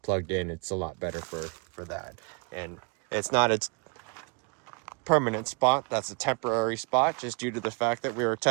plugged in, it's a lot better for that. And it's not its permanent spot, that's a temporary spot just due to the fact that we were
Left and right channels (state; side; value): quieter; left; 33.6 dB